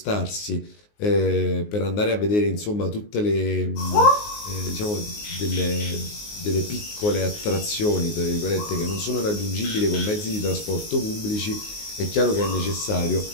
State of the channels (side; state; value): right; late; 19 ms